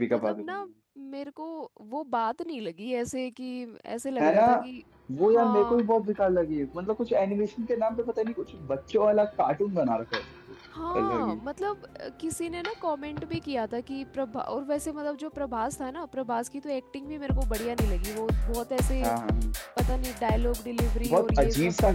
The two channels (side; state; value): both; identical; correlation 1.00